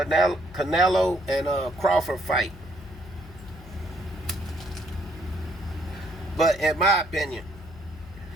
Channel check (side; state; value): left; noise; hum, 18 dB below the sound